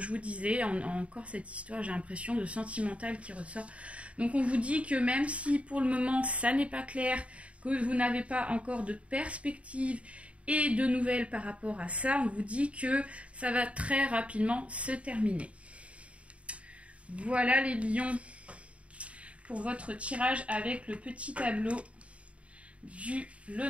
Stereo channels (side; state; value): left; late; 0.063 ms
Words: je vous disais, encore cette histoire, j'ai l'impression de sentimental qui ressort. Donc, on vous dit que même si pour le moment, ça n'est pas clair, que vous n'avez pas encore de perspective et de nouvelles par rapport à ça, on vous dit que ça va très rapidement se terminer. Voilà les lions pour votre tirage avec le petit tableau du